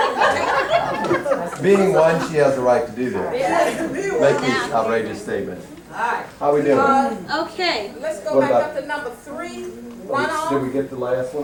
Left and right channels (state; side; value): identical; both; correlation 1.00